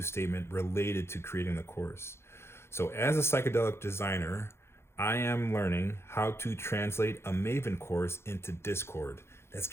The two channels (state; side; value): late; right; 0.12 ms